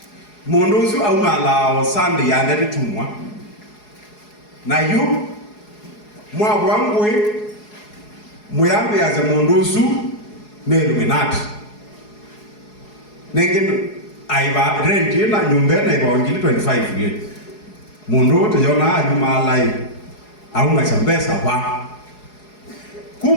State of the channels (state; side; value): late; right; 4.8 ms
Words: mundu usu au malao Sunday yande tumwa na yu mwa wangwe muyambe yaze mundu usu ne Illuminati nengin aiba rent na nyumba na iba ngili 25 ye mundu te yona ayu malai au na chambesa ba